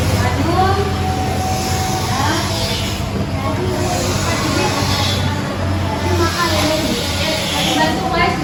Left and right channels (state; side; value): identical; both; correlation 1.00